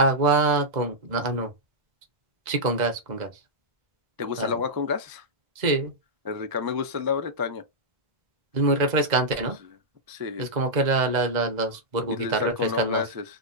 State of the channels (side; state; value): left; late; 2.0 ms